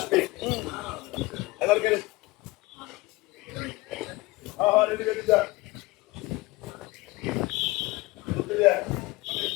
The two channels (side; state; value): right; quieter; 21.3 dB